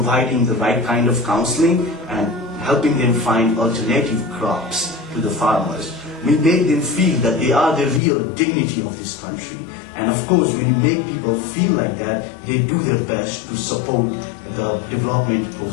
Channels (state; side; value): drops out; right; at 8.0 s